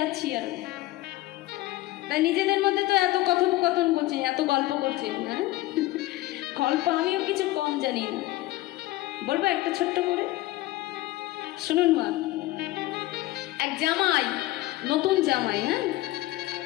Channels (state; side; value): quieter; right; 17.7 dB